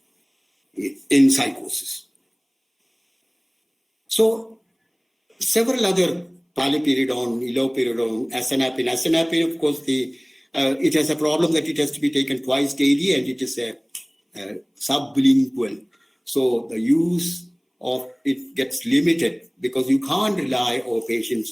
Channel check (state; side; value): identical; both; correlation 1.00